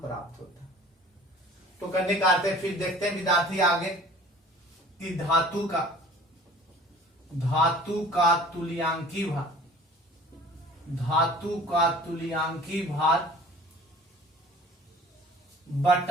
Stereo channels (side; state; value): both; normal; correlation 0.47